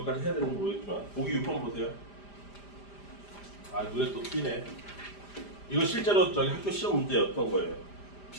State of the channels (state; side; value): late; right; 5.0 ms